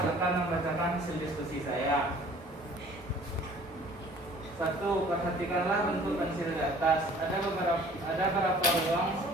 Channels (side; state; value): both; normal; correlation 0.52